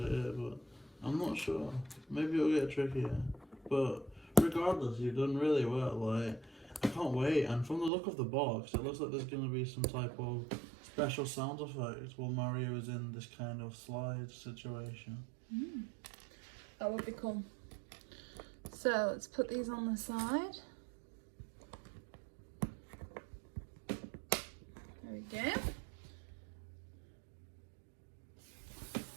it, but I'm not sure. Maybe it'll get trickier. But regardless, you've done really well. Like, I can't wait. And from the look of the box, it looks like there's going to be some type of special sound effect while Mario is in this kind of slide situation. That would be cool. So let's put these on the side. There we go.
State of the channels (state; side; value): drops out; left; at 7.9 s